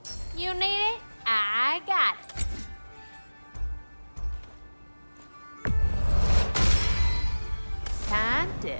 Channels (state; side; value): inverted; both; correlation -1.00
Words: You need it? I got it. Time to